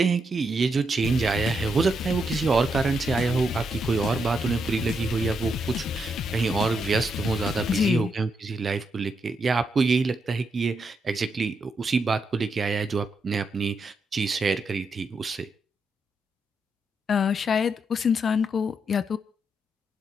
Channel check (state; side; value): normal; both; correlation 0.81